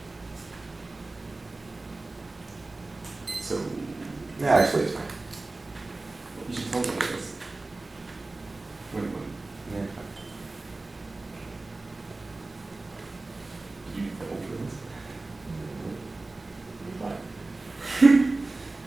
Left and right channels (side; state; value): left; quieter; 3.2 dB